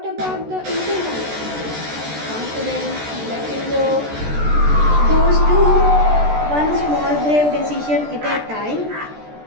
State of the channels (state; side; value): late; left; 14 ms